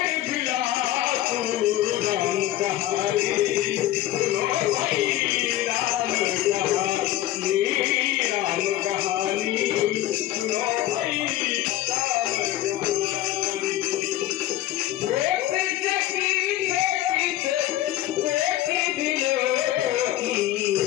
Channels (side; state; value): right; quieter; 14.5 dB